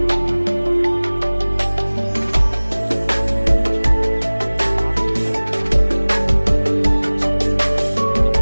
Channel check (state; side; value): inverted; both; correlation -1.00